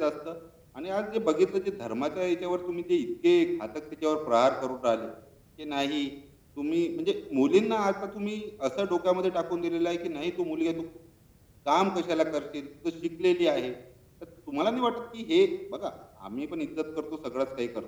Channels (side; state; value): both; identical; correlation 1.00